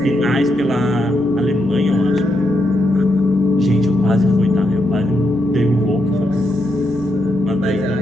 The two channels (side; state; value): left; noise; rumble, 28 dB below the sound